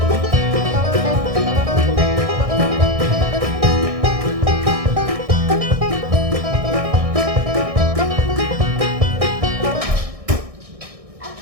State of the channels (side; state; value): left; late; 1.6 ms